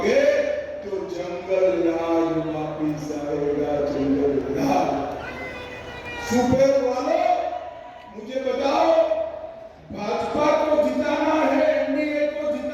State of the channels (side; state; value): both; identical; correlation 1.00